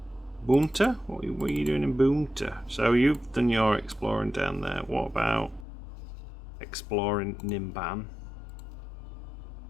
Bunta? What are you doing in Bunta? So you've done your exploring down there. What about exploring Nimban?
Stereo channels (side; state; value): right; drops out; at 5.7 s